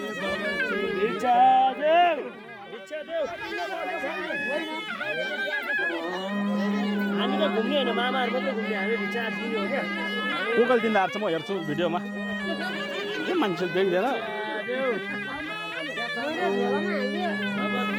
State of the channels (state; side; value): identical; both; correlation 1.00